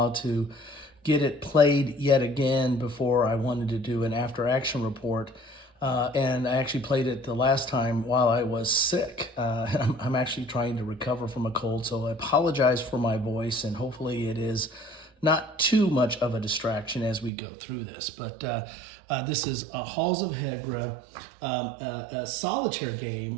to get it played yet again before I wanted to do an after-action report. And I actually played it the last time while I was sick. I'm actually trying to recover from a cold, so I apologize for my voice, and hopefully it is not too much of a distraction as we go through this. But this is Halls of Hegra, a solitaire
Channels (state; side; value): drops out; left; at 17.3 s